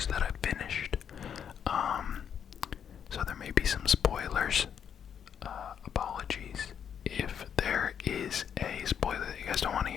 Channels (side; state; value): right; quieter; 8.2 dB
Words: that I've finished. So there may be some spoilers. Apologies if there is a spoiler that you guys don't want to